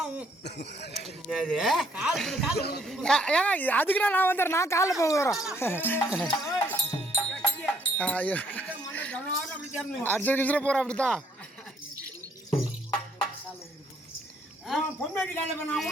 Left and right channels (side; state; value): both; normal; correlation 0.68